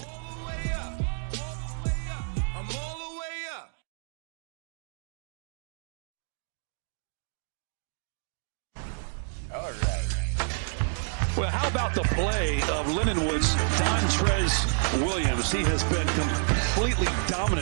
All right. Well, how about the play of Lindenwood's Dontrez Williams? He has been completely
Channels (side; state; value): left; silent; digital silence